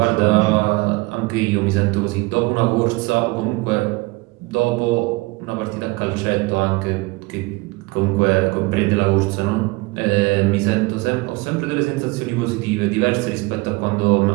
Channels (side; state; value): left; quieter; 24.2 dB